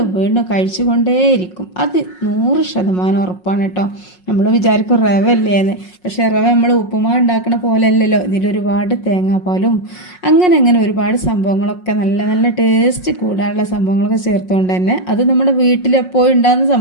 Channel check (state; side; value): late; right; 5.5 ms